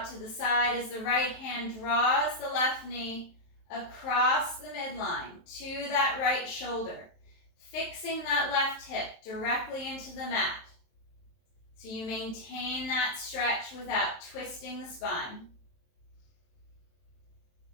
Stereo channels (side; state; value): right; late; 23 ms